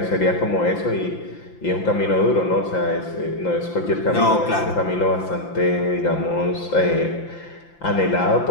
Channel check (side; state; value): right; late; 5.8 ms